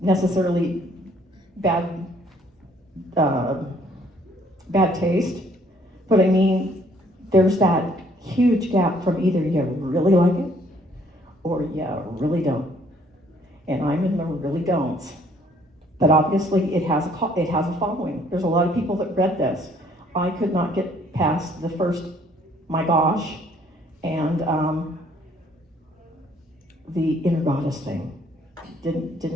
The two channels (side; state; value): both; normal; correlation 0.62